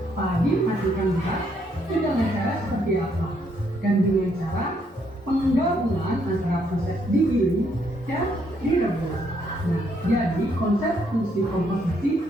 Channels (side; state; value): both; normal; correlation 0.72